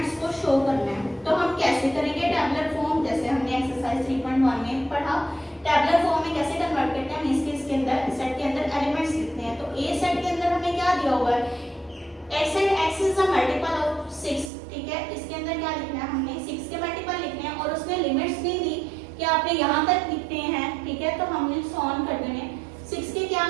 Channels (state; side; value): drops out; left; at 14.5 s